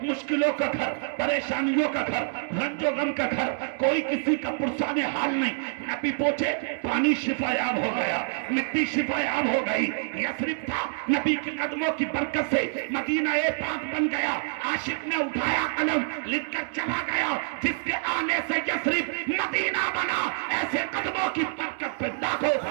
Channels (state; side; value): silent; left; 60 dB below the other